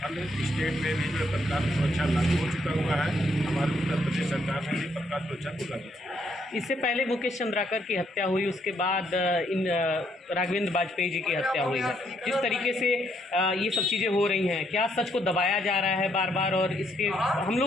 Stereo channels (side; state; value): both; normal; correlation 0.73